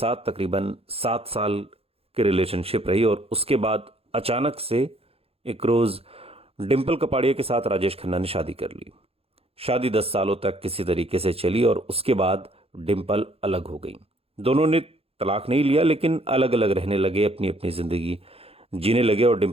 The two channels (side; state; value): left; late; 0.28 ms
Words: तकरीबन 7 साल की रिलेशनशिप रही। और उसके बाद अचानक से एक रोज़ डिम्पल कपाड़िया के साथ राजेश खन्ना ने शादी कर ली। शादी 10 सालों तक किसी तरीके से चली और उसके बाद डिम्पल अलग हो गई। दोनों ने तलाक नहीं लिया, लेकिन अलग अलग रहने लगे, अपनी अपनी ज़िंदगी जीने लगे और